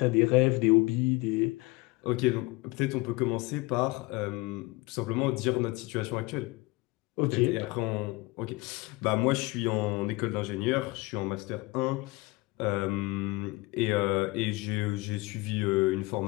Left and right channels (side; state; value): right; quieter; 23.0 dB